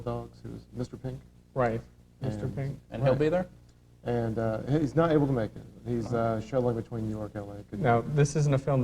who's Mr. Pink. Right, Mr. And- Pink. And he'll be there? And he's not able to make it. He's shuttling between New York and L.A. Couldn't Now, make it. this isn't a film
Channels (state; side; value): identical; both; correlation 1.00